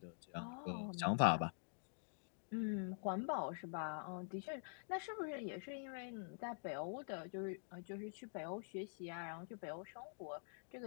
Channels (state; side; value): silent; right; digital silence